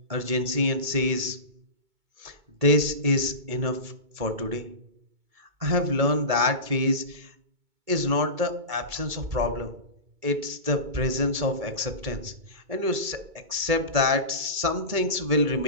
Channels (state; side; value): late; left; 2.2 ms